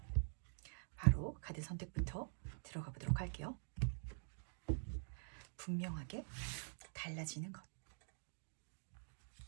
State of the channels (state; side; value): silent; left; digital silence